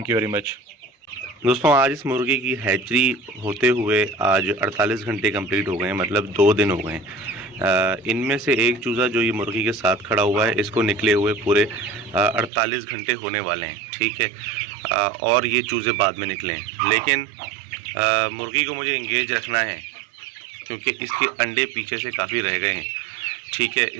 you very much. दोस्तों, आज इस मुर्गी की हैचरी होते हुए आज 48 घंटे कंप्लीट हो गए हैं, मतलब 2 दिन हो गए हैं। इनमें से एक चूज़ा जो ये मुर्गी के साथ खड़ा हुआ है, इसको निकले हुए पूरे 48 घंटे होने वाले हैं, ठीक है। और ये चूज़े बाद में निकले हैं, लेकिन मुर्गी को मुझे इंगेज रखना है क्योंकि इसके अंडे पीछे से काफ़ी रह गए हैं, ठीक है।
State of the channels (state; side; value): drops out; left; at 12.5 s